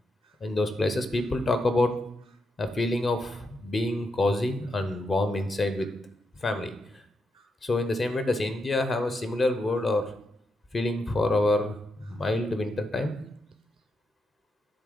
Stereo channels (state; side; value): normal; both; correlation 0.83